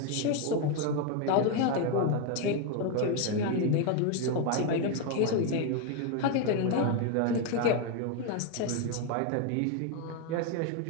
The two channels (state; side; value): different; both; correlation 0.01